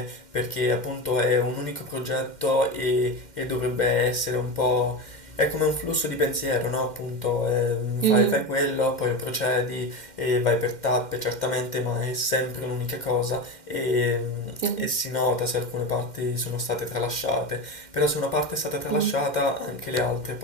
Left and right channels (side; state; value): right; late; 2.1 ms